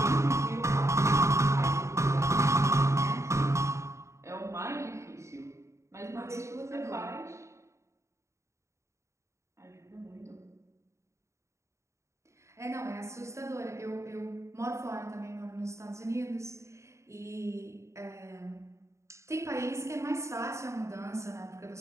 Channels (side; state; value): left; late; 0.14 ms